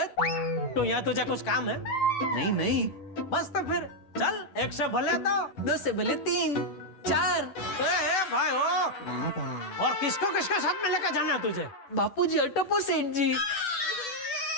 तो यहाँ तुझे कुछ काम है? नहीं बस तो फिर चल, एक से भले दो से भले 3 4। भाई हो, और किसको किसके साथ में लेकर जाना है तुझे? बापूजी अटपो सेठ जी।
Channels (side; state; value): right; late; 10 ms